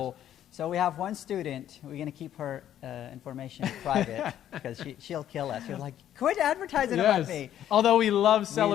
So we have one student. We're going to keep her information private because she'll kill us. She's like, quit advertising about me. Although we love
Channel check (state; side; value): quieter; right; 11.1 dB